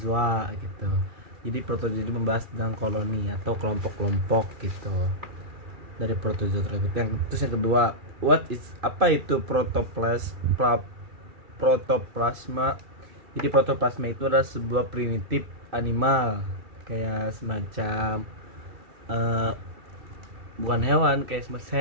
gitu. Jadi protozoa itu membahas tentang koloni atau kelompok-kelompok gitu dari protozoa tersebut. Terus yang kedua, apa itu protoplasma? Jadi protoplasma itu adalah sebuah primitif animal, kayak semacam bukan hewan, kayak semacam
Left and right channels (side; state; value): left; late; 2.4 ms